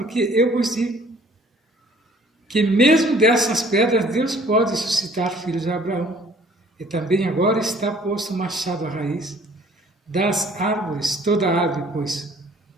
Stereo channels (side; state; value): both; normal; correlation 0.56